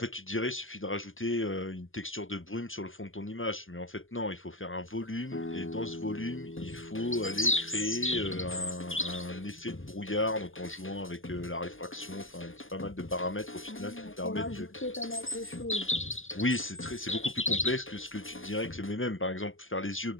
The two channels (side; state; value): right; late; 0.58 ms